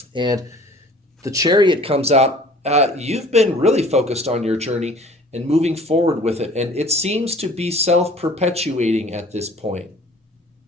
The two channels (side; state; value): both; normal; correlation 0.49